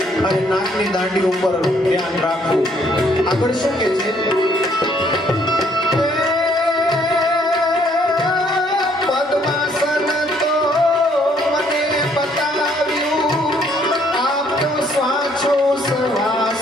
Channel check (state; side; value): normal; both; correlation 0.65